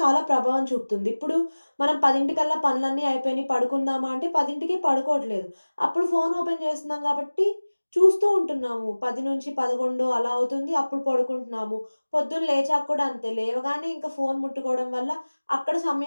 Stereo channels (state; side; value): inverted; both; correlation -1.00